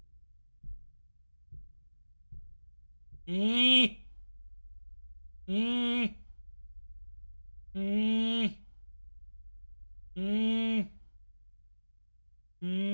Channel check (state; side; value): inverted; both; correlation -1.00